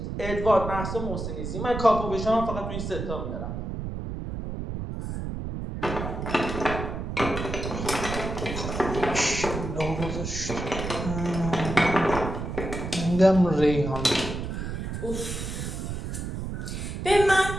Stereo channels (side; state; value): right; noise; rumble, 5 dB below the sound